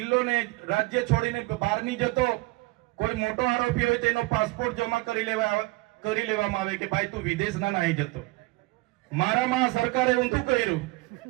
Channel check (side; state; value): left; quieter; 22.9 dB